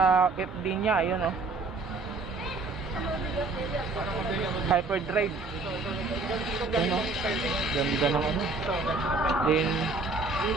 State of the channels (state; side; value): quieter; left; 3.6 dB